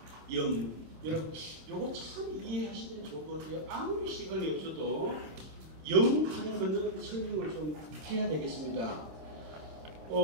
염. 여러분, 요거 참 이해하시면 좋을 것 같아요. 아무리 시간이 없어도 염 하는 거는 설명을 좀 해야 되겠습니다.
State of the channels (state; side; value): late; left; 27 ms